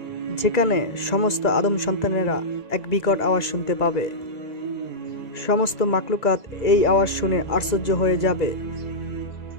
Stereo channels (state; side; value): late; right; 2.0 ms